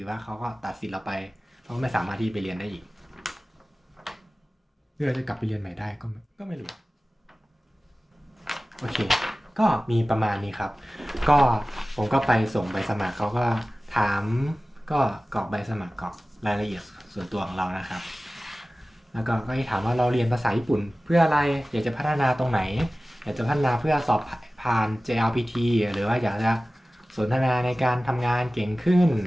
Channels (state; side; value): normal; both; correlation 0.97